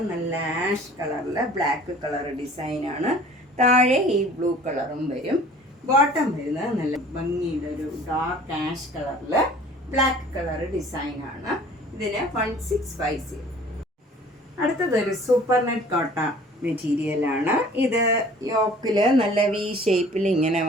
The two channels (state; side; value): normal; both; correlation 0.49